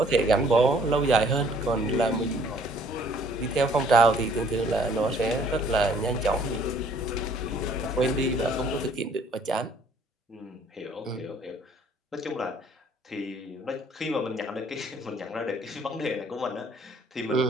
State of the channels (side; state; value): both; normal; correlation 0.59